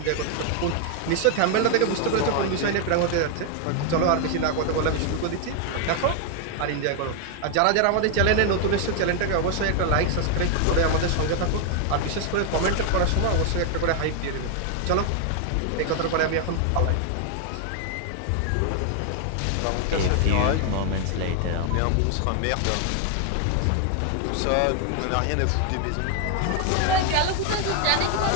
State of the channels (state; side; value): different; both; correlation 0.00